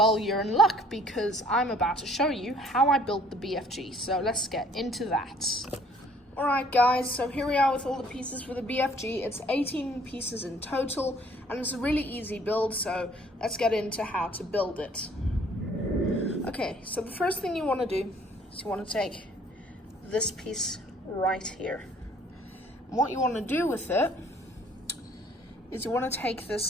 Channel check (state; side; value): normal; both; correlation 0.58